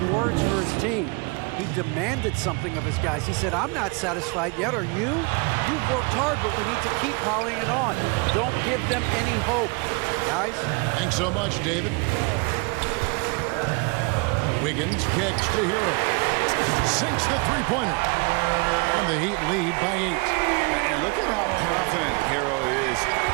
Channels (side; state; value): left; quieter; 30.0 dB